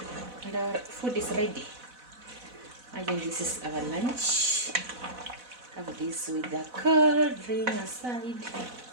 And our food is ready. Imagine this is our lunch. Have this with the cold drink aside.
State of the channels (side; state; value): left; late; 4.0 ms